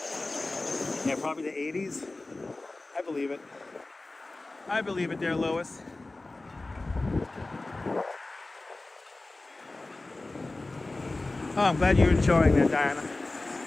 Yeah, probably the 80s. I believe it. I believe it there, Lois. Oh, I'm glad you're enjoying that, Diana.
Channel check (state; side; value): quieter; right; 3.1 dB